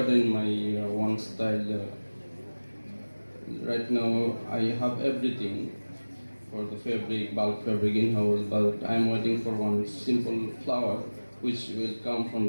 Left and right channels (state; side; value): inverted; both; correlation -1.00